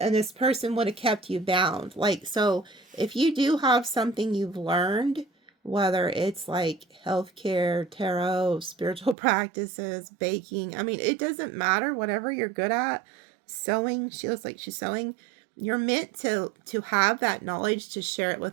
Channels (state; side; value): drops out; left; at 9.2 s